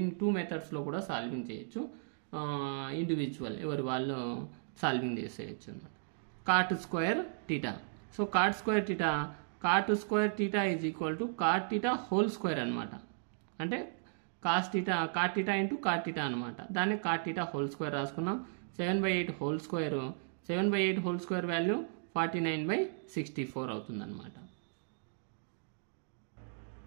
2 మెథడ్స్లో కూడా సాల్వింగ్ చేయొచ్చు. ఇండివిజువల్ ఎవరు వాళ్ళు సాల్వింగ్ చేసేయచ్చు అన్నమాట. Cot square theta. So cot square theta is equal to cot theta whole square అనమాట. అంటే cot theta into cot theta అనమాట. దాన్ని కాట్ టీటా హోల్ స్క్వేర్ రాసుకున్నాం. 7/8 whole square 7/8 whole square value 49/64 అవుతుంది అనమాట.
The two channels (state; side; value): silent; left; digital silence